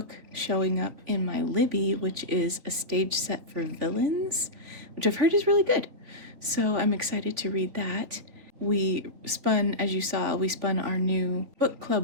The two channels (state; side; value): late; left; 3.8 ms